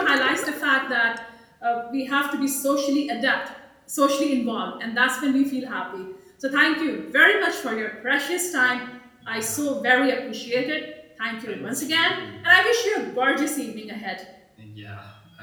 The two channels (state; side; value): identical; both; correlation 1.00